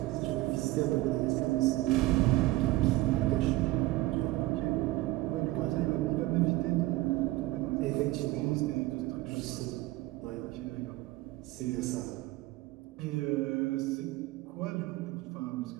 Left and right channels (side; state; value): left; quieter; 18.5 dB